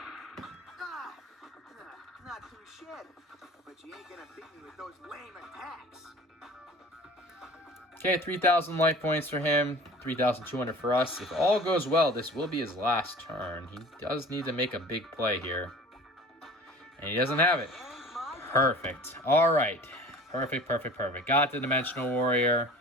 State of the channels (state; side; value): normal; both; correlation 0.43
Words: Not too shit, but you ain't gonna beat me with those lame attacks. Okay, 3,000 life points for him, 3,200 for us. If all goes well, this will be his last turn. He does need to make a big play here. And he doesn't have it. Perfect. All right. Perfect, perfect, perfect. Got the Dimensional Warrior.